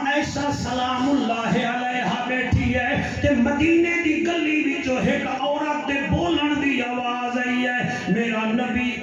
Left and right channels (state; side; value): identical; both; correlation 1.00